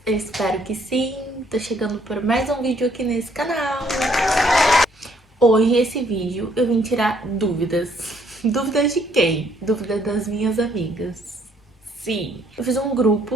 Eu espero que sim, tô chegando por mais um vídeo aqui nesse canal. Hoje esse vídeo eu vim tirar dúvidas. Dúvidas de quem? Dúvidas das minhas amigas. Sim, eu fiz um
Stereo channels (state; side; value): normal; both; correlation 0.66